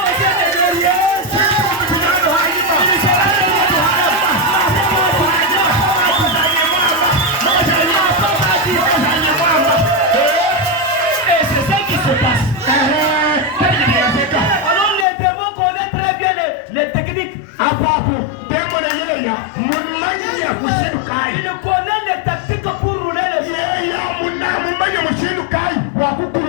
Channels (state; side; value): drops out; right; at 15.1 s